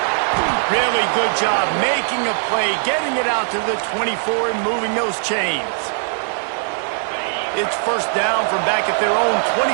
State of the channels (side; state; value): left; silent; digital silence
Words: Really good job making a play, getting it out to the 24 and moving those chains. It's first down from back at their own